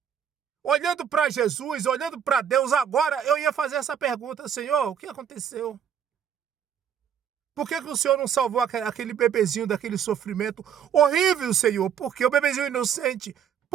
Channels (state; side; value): quieter; left; 8.6 dB